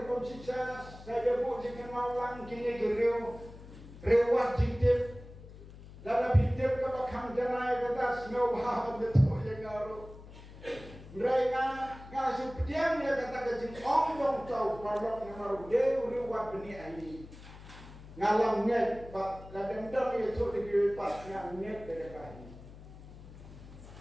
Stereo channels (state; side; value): noise; left; hum, 17 dB below the sound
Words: saya buat jika malang kini rewat jitip. Dalam hidup kita akan janai kita semua bahagia betul yang garu. Mereka ngasih pediam dia kata kecil orang tahu kalau mengaruh dia riwat benih ini. Ngalam net, pak kadang-kadang itu dikiripat yang net dekat ini.